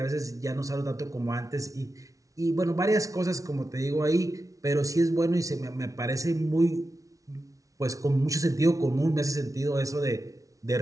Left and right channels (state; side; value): late; left; 0.17 ms